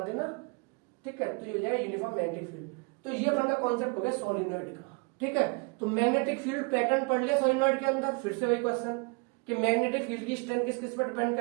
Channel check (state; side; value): quieter; left; 32.2 dB